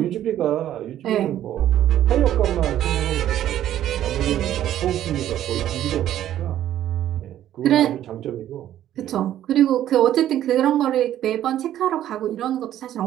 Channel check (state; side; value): quieter; left; 11.9 dB